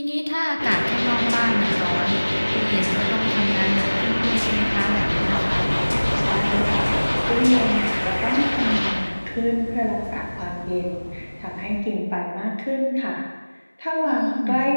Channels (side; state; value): both; inverted; correlation -1.00